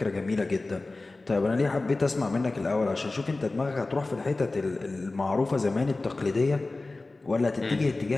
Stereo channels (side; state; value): right; quieter; 3.2 dB